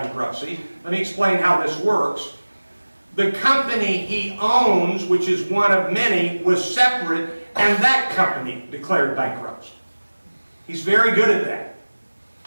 Let me explain how this works. The company he owns, which is one of many, was separate, and that company declared bankruptcy. He's very good at that.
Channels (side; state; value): both; inverted; correlation -1.00